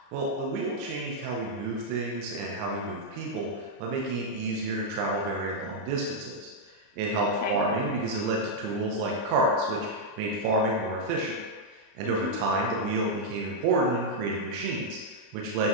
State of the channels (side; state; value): left; late; 29 ms